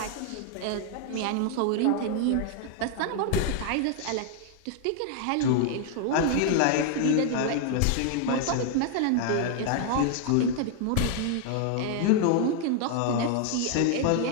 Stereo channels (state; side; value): different; both; correlation 0.00